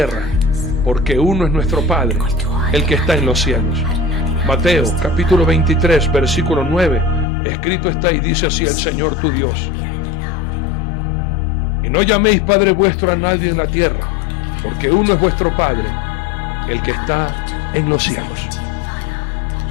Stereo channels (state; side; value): drops out; right; at 7.2 s